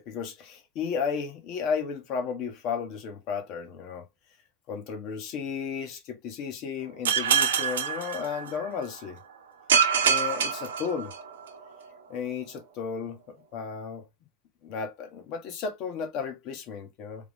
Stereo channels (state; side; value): normal; both; correlation -0.12